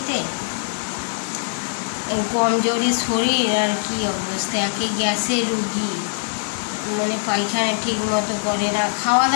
কমজোরি শরীর, আর কি অবস্থা, একে গ্যাসের রুগী, মানে পায়খানা ঠিক মতো করে না, খাওয়া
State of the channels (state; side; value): silent; right; 57 dB below the other